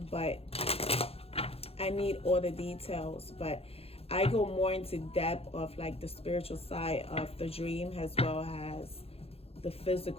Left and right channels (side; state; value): right; late; 0.29 ms